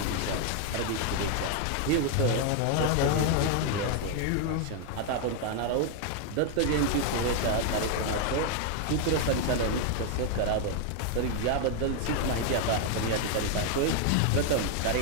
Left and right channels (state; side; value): different; both; correlation 0.01